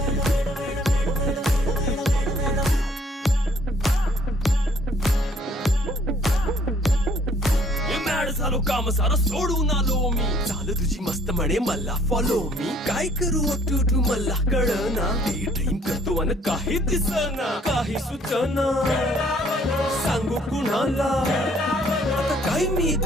झालो काम सारं सोडून आलो मी चाल तुझी मस्त म्हणे मला फॉलो मी काय करू टू मला कळना ती ड्रीम करतो अन काही दिसना काही सुचना सांगू कुणाला आता काय मी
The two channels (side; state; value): both; normal; correlation 0.61